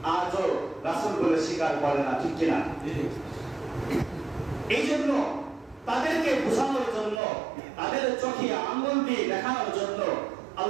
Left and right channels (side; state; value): left; drops out; at 7.2 s